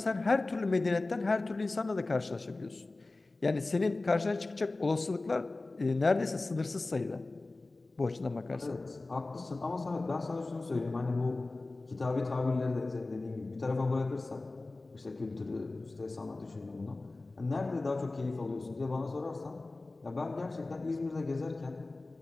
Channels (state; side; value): quieter; right; 3.2 dB